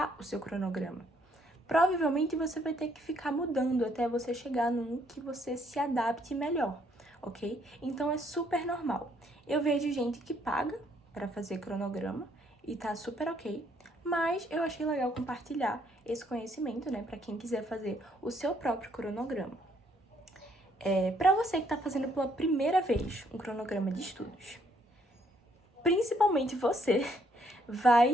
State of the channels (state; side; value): normal; both; correlation 0.69